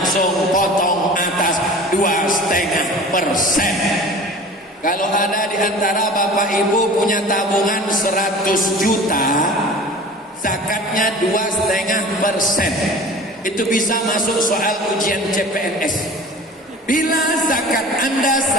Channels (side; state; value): both; normal; correlation 0.40